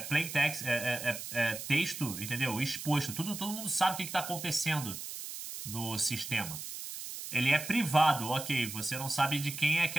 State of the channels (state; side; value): noise; right; hiss, 8 dB below the sound